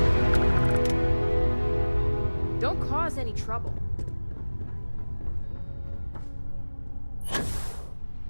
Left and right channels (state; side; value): inverted; both; correlation -1.00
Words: Don't cause any trouble.